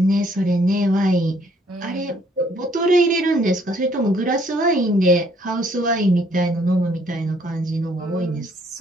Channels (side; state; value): both; normal; correlation 0.65